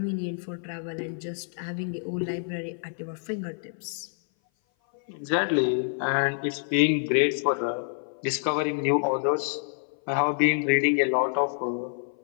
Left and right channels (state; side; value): silent; right; 56 dB below the other